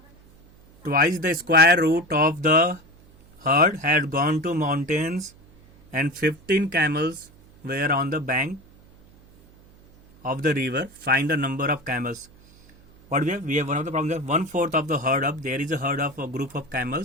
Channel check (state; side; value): noise; right; hum, 26 dB below the sound